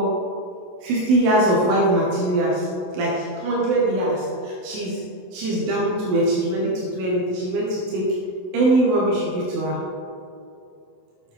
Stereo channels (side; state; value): left; late; 27 ms